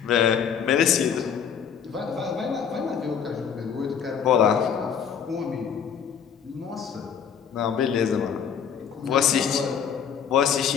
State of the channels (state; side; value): quieter; right; 7.6 dB